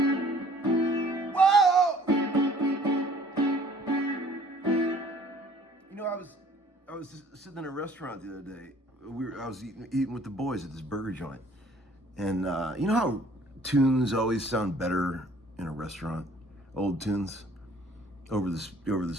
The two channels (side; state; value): both; normal; correlation 0.55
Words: Whoa! You know, I was just sitting in a restaurant the other day. I was eating with the boys at this burger joint, and you know how tunes always sound better in a restaurant, old tunes over the